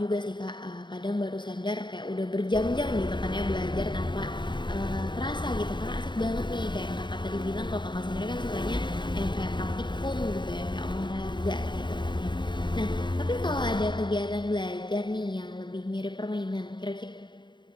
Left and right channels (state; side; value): late; right; 0.22 ms